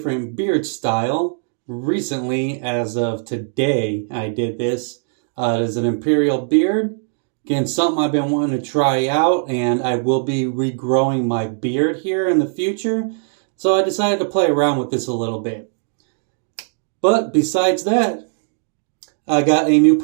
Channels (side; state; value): left; silent; digital silence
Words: beard style recently. As of today, I did this. It is an imperial beard. Again, something I've been wanting to try out, and I will be regrowing my beard here in the future. So I decided to play around with this a little bit. But besides that, I got a new